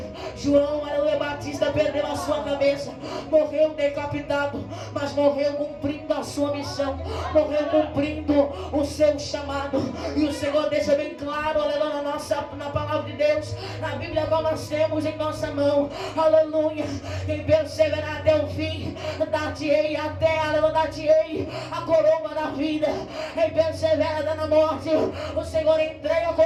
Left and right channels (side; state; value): both; identical; correlation 1.00